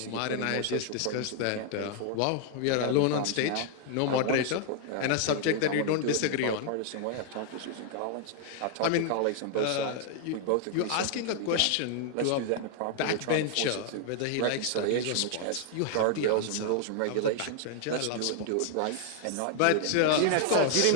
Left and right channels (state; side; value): different; both; correlation 0.00